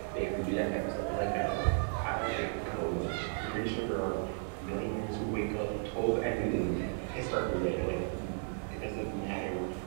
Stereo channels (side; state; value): left; silent; 55 dB below the other